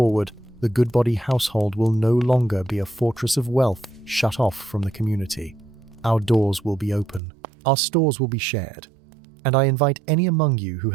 the Goodbody household will no longer be a fortress of wealth shut off from the community. Our doors will be open. Our stores will be shared. And I invite any among you who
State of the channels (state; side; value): drops out; left; at 7.2 s